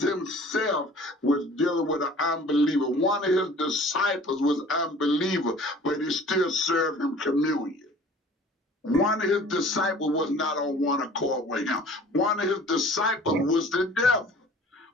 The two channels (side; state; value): both; normal; correlation 0.48